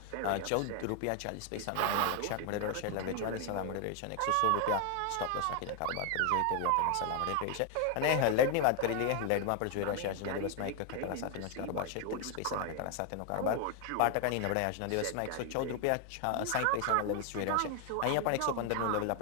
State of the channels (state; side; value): different; both; correlation 0.00